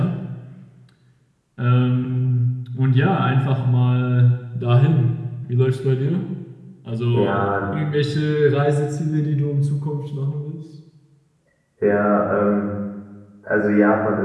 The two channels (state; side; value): identical; both; correlation 1.00